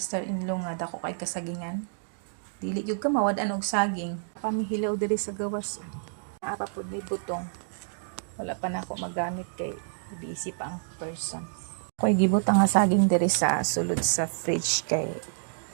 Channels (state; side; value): silent; left; digital silence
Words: nga dako kay kasagingan. Dili gyud ka mawad-an og saging. Pamihilaw diri sa gawas. Apa pud ni butong. Wala pa na ako magamit kay busy pa ang person. Ako'y gibutang nga saging diri sa sulod sa fridge kay